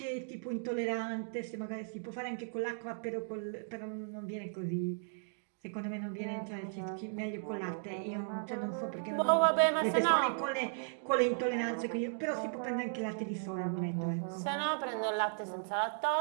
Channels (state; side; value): silent; left; digital silence